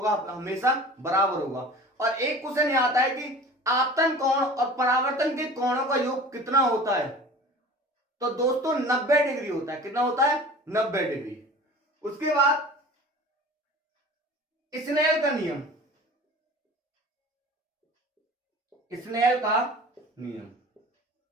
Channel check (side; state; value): both; normal; correlation 0.41